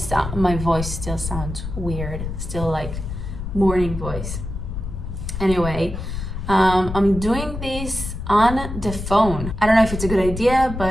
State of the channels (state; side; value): noise; left; rumble, 7 dB below the sound